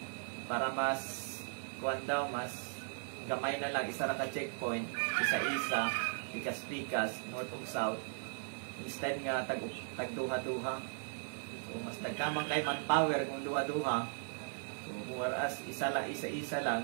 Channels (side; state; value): left; silent; digital silence